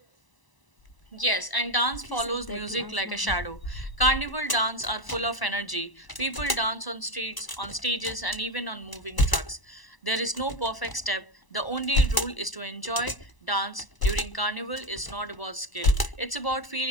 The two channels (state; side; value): late; right; 1.0 ms